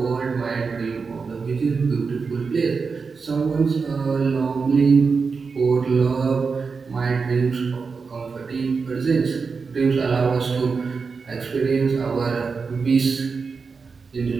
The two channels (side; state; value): left; quieter; 5.0 dB